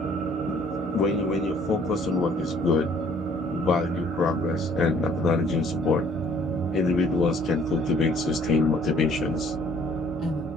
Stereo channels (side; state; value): both; normal; correlation 0.58